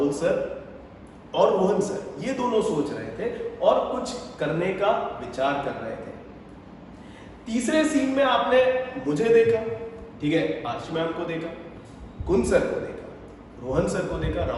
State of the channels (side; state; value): both; identical; correlation 1.00